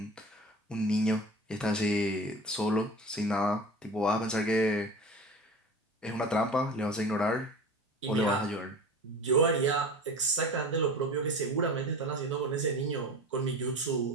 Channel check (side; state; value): both; normal; correlation 0.35